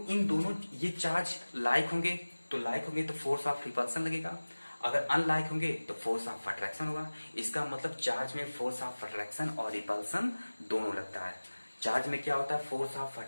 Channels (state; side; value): inverted; both; correlation -1.00